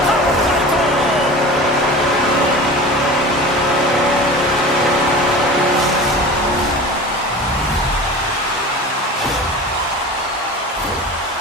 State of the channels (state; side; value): normal; both; correlation 0.35